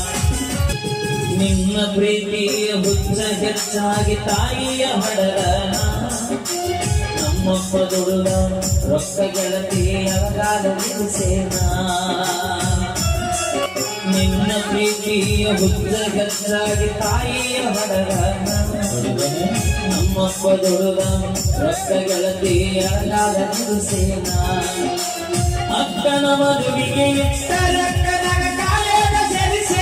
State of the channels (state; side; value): identical; both; correlation 1.00